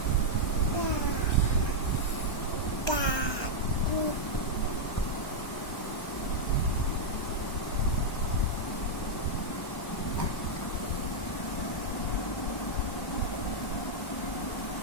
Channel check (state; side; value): late; right; 1.2 ms